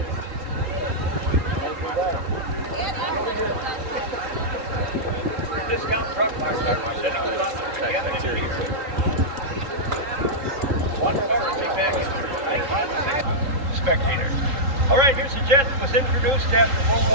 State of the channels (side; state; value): left; late; 3.8 ms